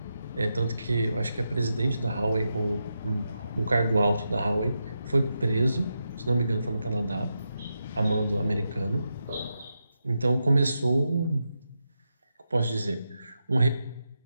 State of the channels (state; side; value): inverted; both; correlation -0.86